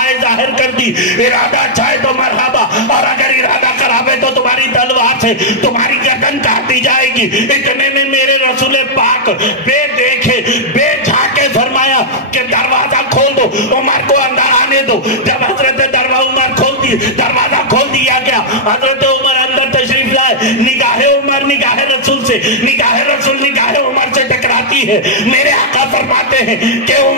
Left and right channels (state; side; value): normal; both; correlation -0.07